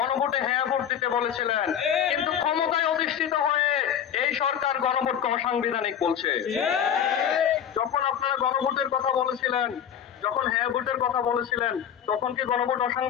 হ্যাঁ ভোট দিতে বলেছিলেন, কিন্তু ক্ষমতায় অধিষ্ঠিত হয়ে এই সরকার গণভোটকে অসাংবিধানিক বলছে। যখন আপনারা গণভোটের কথা বলেছিলেন, যখন হ্যাঁ ভোটের কথা বলেছিলেন, তখন কি গণভোট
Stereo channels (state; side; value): quieter; right; 8.9 dB